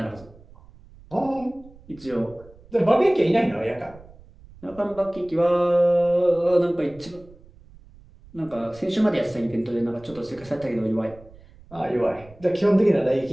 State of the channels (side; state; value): right; noise; rumble, 23 dB below the sound